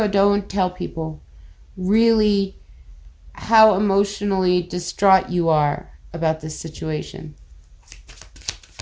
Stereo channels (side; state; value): both; identical; correlation 1.00